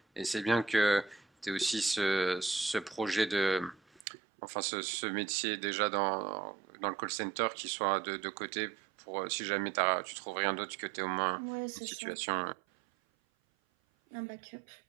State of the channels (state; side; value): drops out; left; at 4.0 s